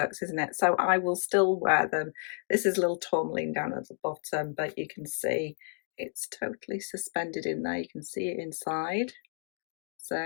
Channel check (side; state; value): right; silent; 57 dB below the other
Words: isn't it? So I will still wear them. This is a little tourmaline down at the bottom, but you can see it's totally suspended in there. You can see it inside.